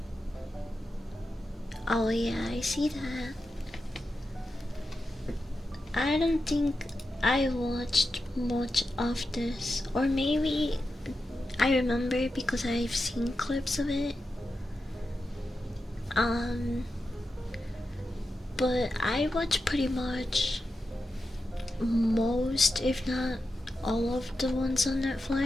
Oh yeah, I see that. I don't think I watched much of this, or maybe I remember because I've seen clips of it. But I watch pretty much most, if not all of the ones on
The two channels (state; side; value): normal; both; correlation 0.89